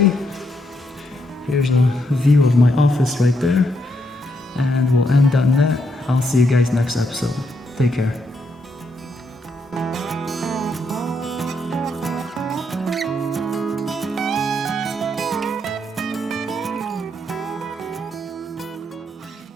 Here's a view of my office right there. And we'll end on that. I'll see you guys next episode. Take care.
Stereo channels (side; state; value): both; normal; correlation 0.77